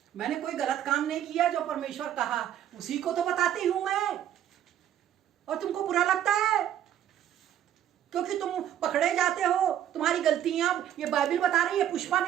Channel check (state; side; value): quieter; left; 10.8 dB